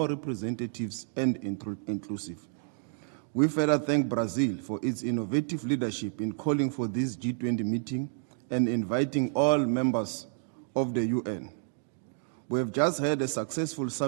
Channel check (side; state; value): left; silent; digital silence